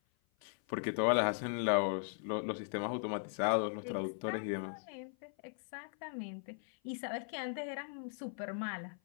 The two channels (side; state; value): right; silent; 52 dB below the other